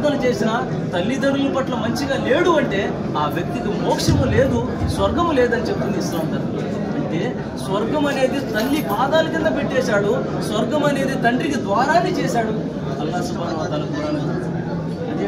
చేసినా తల్లిదండ్రుల పట్ల మంచిగా లేడు అంటే ఆ వ్యక్తికి మోక్షము లేదు, స్వర్గము లేదని చెప్తుంది ఇస్లాం ధర్మం. అంటే స్వర్గం అనేది తల్లి పాదాల కింద పెట్టేశాడు, స్వర్గం అనేది తండ్రికి ద్వారాన్ని చేశాడు అల్లాహ్ సుబ్హానహు వ తఆలా ఖురాన్.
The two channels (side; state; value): both; identical; correlation 1.00